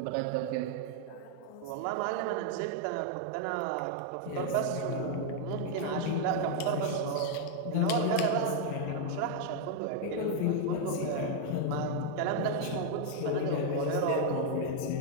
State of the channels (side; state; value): both; different; correlation 0.00